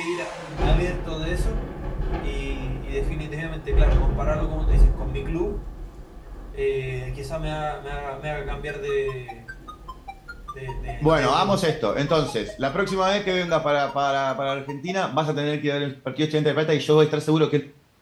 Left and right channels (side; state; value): both; identical; correlation 1.00